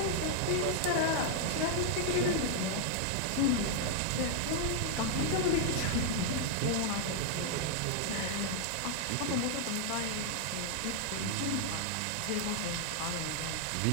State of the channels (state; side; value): different; both; correlation -0.01